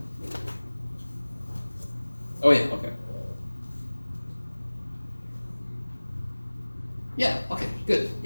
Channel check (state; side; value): inverted; both; correlation -1.00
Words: Oh yeah, okay. Yeah, okay, good.